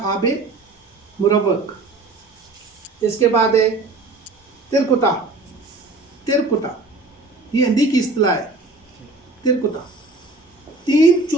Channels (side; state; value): left; quieter; 3.3 dB